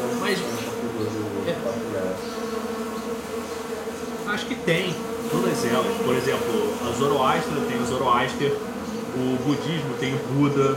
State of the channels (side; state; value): both; identical; correlation 1.00